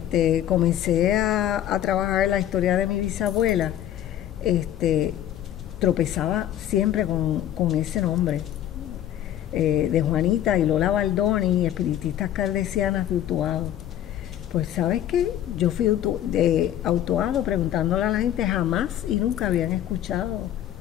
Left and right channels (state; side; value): quieter; right; 11.4 dB